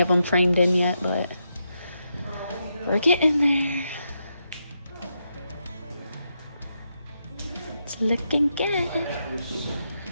them framed in yet, but we're getting there. It's looking good.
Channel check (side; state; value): both; inverted; correlation -0.83